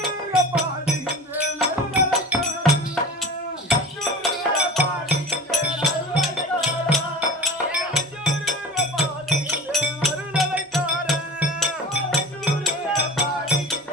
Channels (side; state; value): both; normal; correlation 0.36